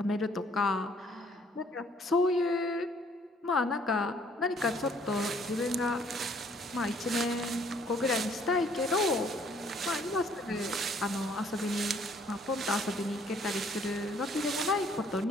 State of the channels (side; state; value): both; normal; correlation 0.62